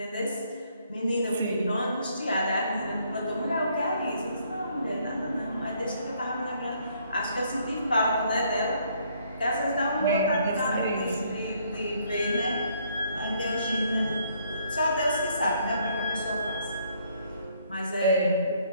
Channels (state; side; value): inverted; both; correlation -0.67